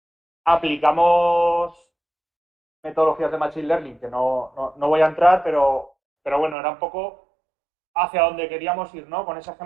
aplicamos metodologías de Machine Learning, que no voy a entrar, pero bueno, era un poco hacia donde queríamos ir, ¿no? Con ese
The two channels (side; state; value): left; drops out; at 6.6 s